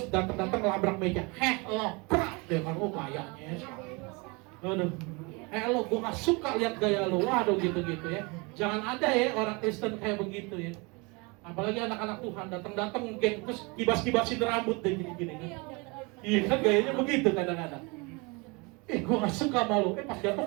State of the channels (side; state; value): left; quieter; 28.3 dB